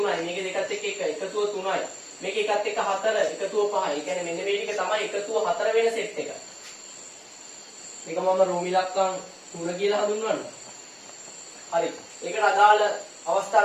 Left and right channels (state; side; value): identical; both; correlation 1.00